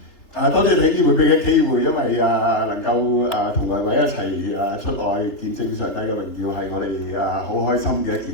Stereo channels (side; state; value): right; late; 3.2 ms